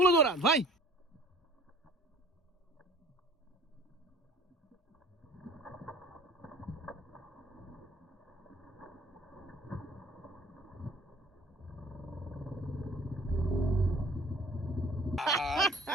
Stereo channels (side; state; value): both; normal; correlation 0.50